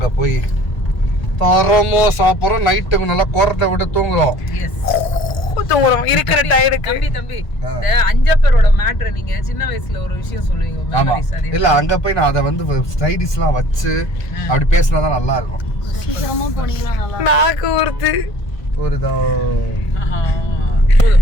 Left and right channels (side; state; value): right; late; 1.5 ms